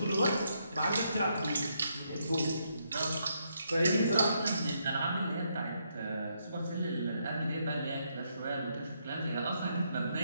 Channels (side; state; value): both; inverted; correlation -0.77